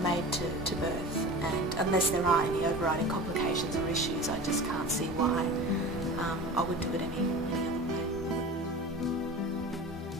to birth, and unless there are any overriding complications or issues, I just can't see why I would do it any other way.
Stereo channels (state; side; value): normal; both; correlation 0.34